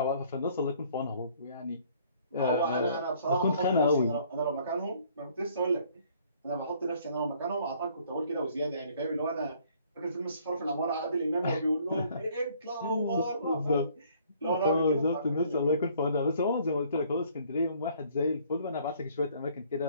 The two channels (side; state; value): both; inverted; correlation -0.60